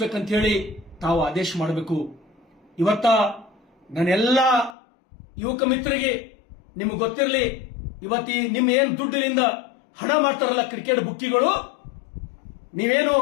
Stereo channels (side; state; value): right; drops out; at 4.8 s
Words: ಹೇಳಿ ತಾವು ಆದೇಶ ಮಾಡಬೇಕು. ಇವತ್ತ ನನ್ನೆಲ್ಲ ಯುವಕ ಮಿತ್ರರಿಗೆ ನಿಮಗೆ ಗೊತ್ತಿರಲಿ, ಇವತ್ತಿ ನಿಮ್ಮ ಏನ್ ದುಡ್ಡಿನಿಂದ ಹಣ ಮಾಡ್ತಾರಲ್ಲ ಕ್ರಿಕೆಟ್ ಬುಕ್ಕಿಗಳು, ನೀವೇನು